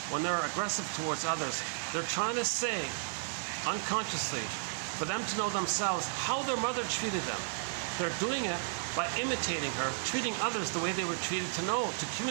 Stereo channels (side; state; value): left; silent; digital silence